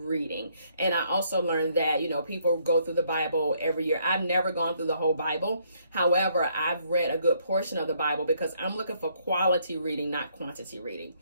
And I also learned that, people go through the Bible every year. I've never gone through the whole Bible. However, I've read a good portion of the Bible because I'm looking for quality reading, not quantity reading.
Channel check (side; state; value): both; inverted; correlation -0.69